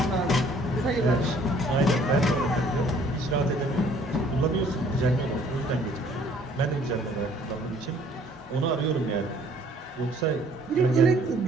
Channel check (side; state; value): both; normal; correlation 0.58